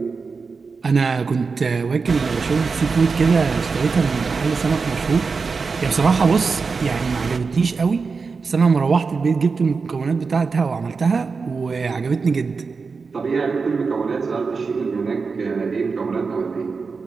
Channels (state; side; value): quieter; left; 4.8 dB